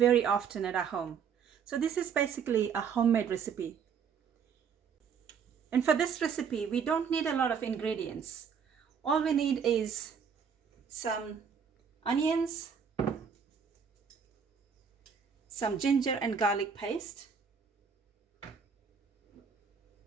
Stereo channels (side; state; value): left; quieter; 6.8 dB